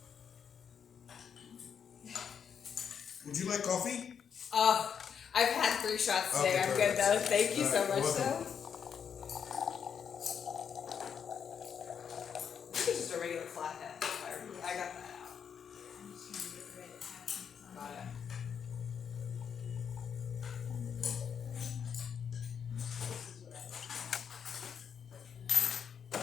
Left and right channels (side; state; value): right; quieter; 7.4 dB